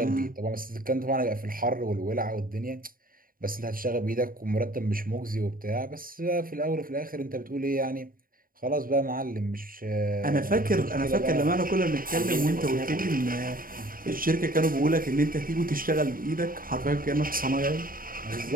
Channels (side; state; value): left; late; 0.41 ms